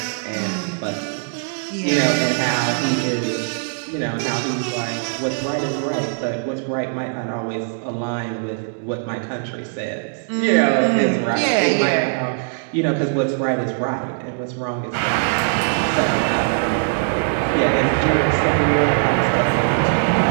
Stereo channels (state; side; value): silent; left; digital silence